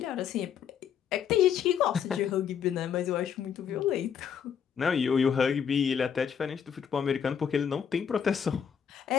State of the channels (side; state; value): right; quieter; 7.9 dB